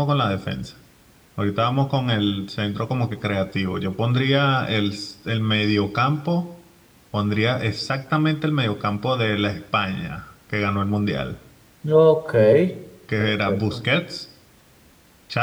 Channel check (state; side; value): identical; both; correlation 1.00